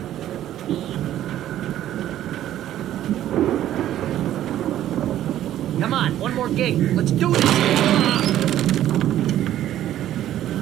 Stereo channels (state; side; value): quieter; left; 12.4 dB